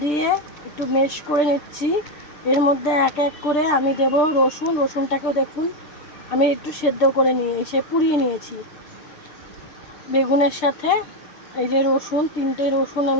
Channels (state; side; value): late; right; 6.7 ms